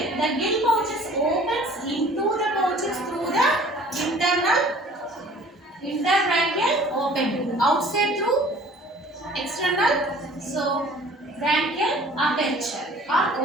The gill pouches opens into the pouches through the interbranchial opening. Outside through external, so branchial aperture or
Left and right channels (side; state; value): both; normal; correlation 0.50